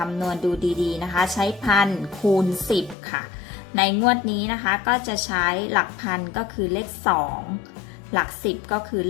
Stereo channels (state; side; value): drops out; right; at 3.0 s